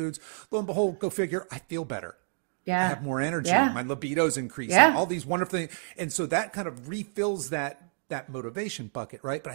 Lo and behold, go figure, I feel better. Yeah. I have more energy. Yeah. My libido's increasing. Yeah. All these wonderful things. And so that kind of refills that motivation bucket, right? But I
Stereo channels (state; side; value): silent; left; digital silence